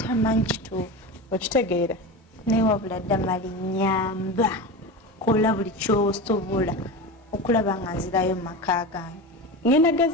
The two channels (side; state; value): both; normal; correlation 0.25